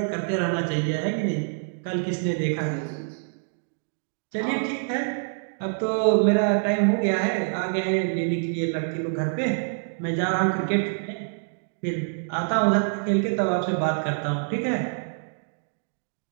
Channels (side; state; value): left; silent; digital silence